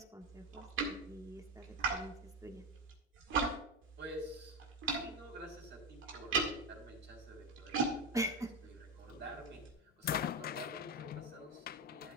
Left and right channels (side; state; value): both; normal; correlation 0.15